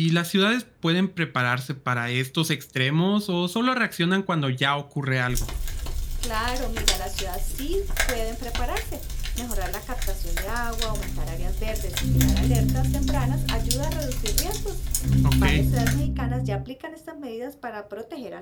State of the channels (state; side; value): identical; both; correlation 1.00